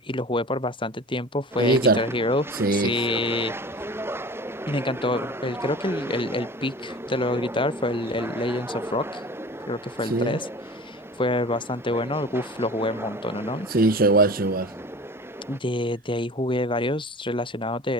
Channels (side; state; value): both; normal; correlation 0.39